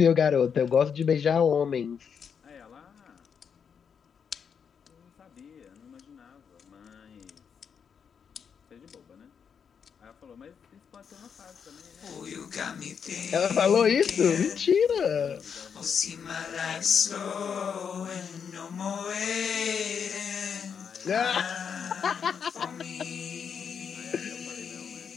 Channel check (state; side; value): quieter; right; 7.0 dB